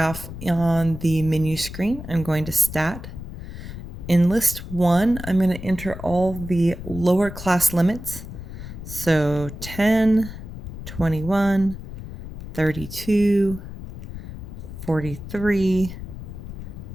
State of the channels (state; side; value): noise; left; rumble, 11 dB below the sound